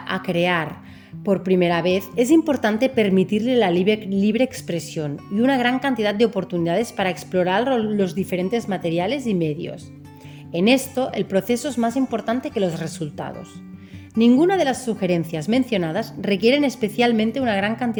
a crear por primera vez, es importante permitirle la libre expresión y una gran cantidad de oportunidades para explorar los diferentes materiales y medios. En esto, el proceso es más importante que los resultados. Ninguna de las sugerencias mencionadas requieren especialmente una gran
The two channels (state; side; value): identical; both; correlation 1.00